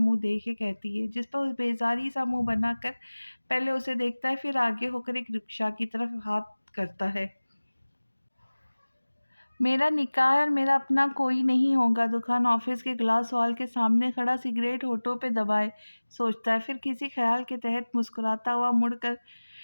देख के कहती है, जिस पर वो बेज़ारी-सा मुँह बनाकर पहले उसे देखता है, फिर आगे होकर एक रिक्शा की तरफ हाथ करता है। मेरा निकाह और मेरा अपना कोई नहीं होगा, दुकान ऑफिस के ग्लास वॉल के सामने खड़ा सिगरेट होठों पे दबाए सोचता है, फिर किसी ख्याल के तहत मुस्कुराता हुआ मुड़कर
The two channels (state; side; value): inverted; both; correlation -1.00